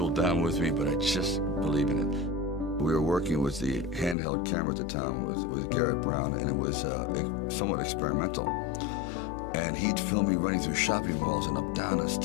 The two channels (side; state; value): right; drops out; at 4.2 s